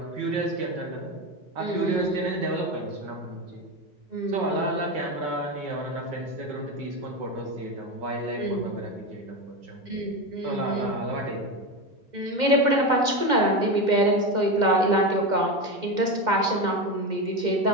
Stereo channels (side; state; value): left; late; 2.1 ms